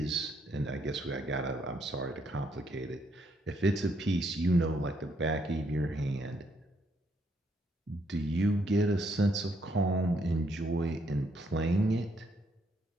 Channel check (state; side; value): normal; both; correlation 0.73